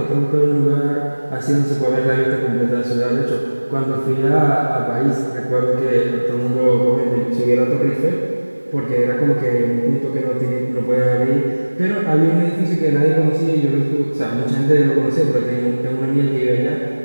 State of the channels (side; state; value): both; inverted; correlation -1.00